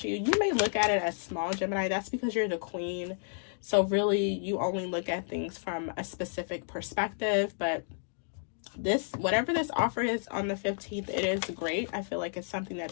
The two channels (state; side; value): silent; right; digital silence